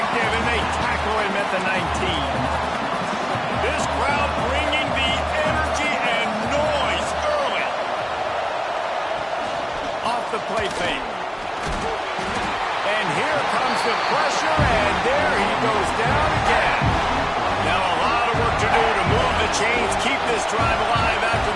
and they tackle him at the 19. This crowd bringing the energy and noise early. Off the play fake. And here comes the pressure, and there he goes down again. Now a lot of work to do to move the chains, keep this drive alive after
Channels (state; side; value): identical; both; correlation 1.00